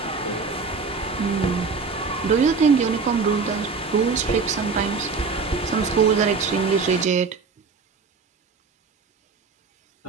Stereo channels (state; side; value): quieter; left; 4.9 dB